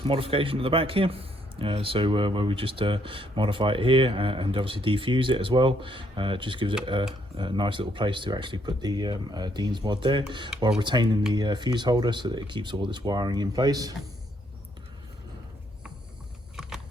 modification at the back here. Where we just modify it here and obviously defuse it as well. It just gives it a nice little place to actually put the Dean's mod there, while retaining the fuse holder so that it keeps all this wiring in place.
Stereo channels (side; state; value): both; normal; correlation 0.71